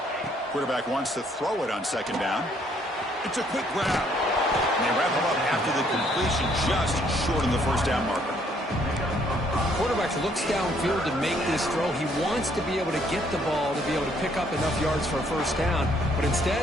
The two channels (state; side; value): normal; both; correlation 0.66